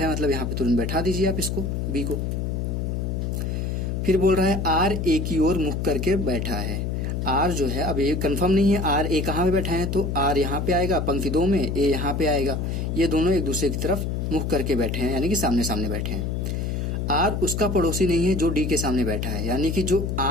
है, मतलब यहाँ पे तुरंत बैठा दीजिए आप इसको, बी को। फिर बोल रहा है आर ए की ओर मुख करके बैठा है। आर जो है अब ये कंफर्म नहीं है, आर ए कहाँ पे बैठा है, तो आर यहाँ पे आएगा पंक्ति 2 में, ए यहाँ पे आएगा। ये दोनों एक दूसरे की तरफ मुख करके बैठे हैं, यानी कि सामने सामने बैठे हैं। आर उसका पड़ोसी नहीं है जो डी के सामने बैठा है, यानी कि जो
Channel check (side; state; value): left; noise; hum, 1 dB below the sound